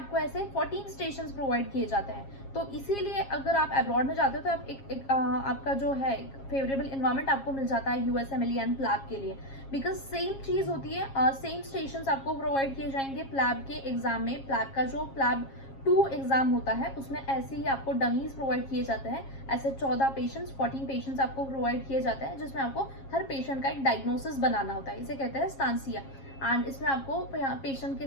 ऐसे 14 स्टेशंस प्रोवाइड किए जाते हैं। तो इसीलिए अगर आप अब्रॉड में जाते हो तो आप आपका जो है फेवरेबल इन्वायरमेंट आपको मिल जाता है यूएसएमएलई एंड प्लैब के लिए, बिकॉज सेम चीज होती है। सेम स्टेशंस आपको प्रोवाइड किए जाएंगे प्लैब के एग्जाम में। प्लैब का जो प्लैब 2 एग्जाम होता है उसमें ऐसे ही आपको डमीज प्रोवाइड किए जाते हैं। ऐसे 14 पेशेंट्स आपको प्रोवाइड किए जाते हैं, जिसमें आपको हर पेशेंट का एक डायग्नोसिस बनाना होता है, इसे कहते हैं स्तांसिया। एंड इसमें आपको पेशेंट के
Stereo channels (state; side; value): late; right; 7.4 ms